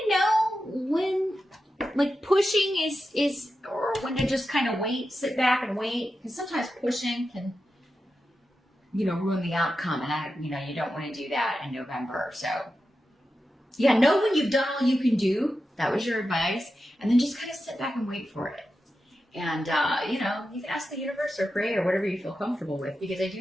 know when like pushing is or when to just kind of wait, sit back and wait, because sometimes pushing can ruin the outcome, and you don't want to do that in November. So yeah, know when you've done all you can do. That was your advice, and then just kind of sit back and wait for it. And, you can ask the universe or pray or whatever you feel comfortable with, because I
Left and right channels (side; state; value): both; normal; correlation 0.90